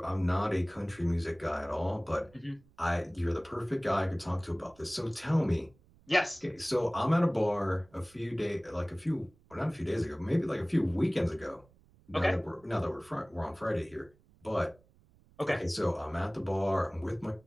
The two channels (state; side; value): noise; right; rumble, 29 dB below the sound